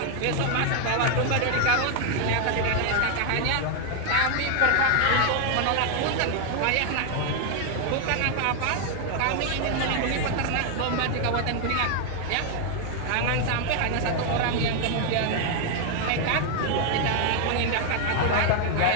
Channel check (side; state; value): both; different; correlation 0.00